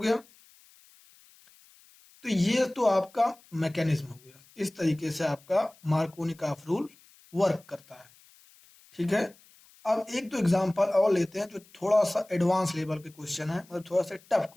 तो ये तो आपका मैकेनिज्म हो गया, इस तरीके से आपका मार्कोनिकॉफ रूल वर्क करता है। ठीक है, अब एक दो एग्जांपल और लेते हैं जो थोड़ा सा एडवांस लेवल के क्वेश्चन है, मतलब थोड़ा सा टफ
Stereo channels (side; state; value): left; noise; hiss, 27 dB below the sound